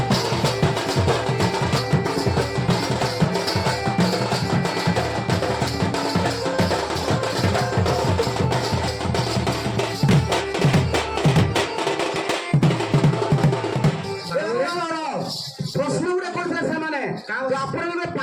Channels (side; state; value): both; identical; correlation 1.00